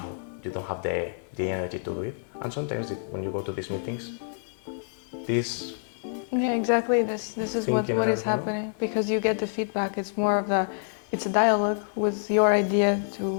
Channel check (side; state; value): right; silent; digital silence